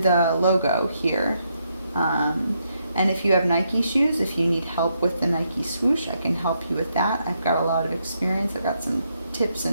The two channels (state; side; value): inverted; both; correlation -0.78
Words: logo here. And if you have Nike shoes, if you need help with the Nike swoosh, I can help you with that. I've got a lot of experience. I've got some tips